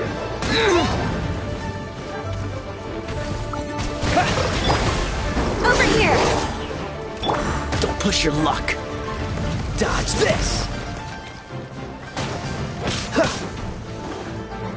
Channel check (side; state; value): both; identical; correlation 1.00